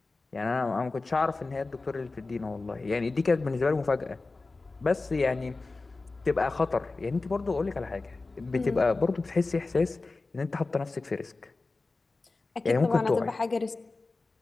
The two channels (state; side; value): quieter; right; 3.6 dB